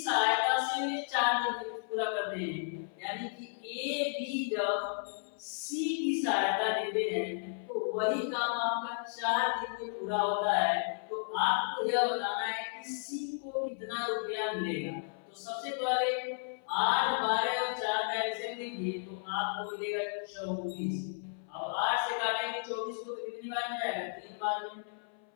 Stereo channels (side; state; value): right; silent; 55 dB below the other